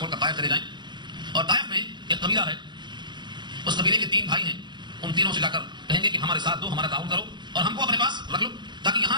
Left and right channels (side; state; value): left; late; 0.22 ms